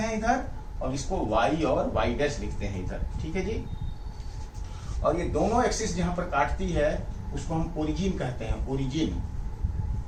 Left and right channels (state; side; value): identical; both; correlation 1.00